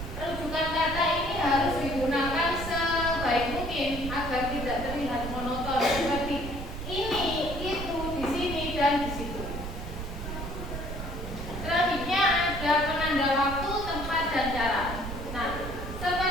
dan cara. Nah,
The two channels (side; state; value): right; noise; rumble, 7 dB below the sound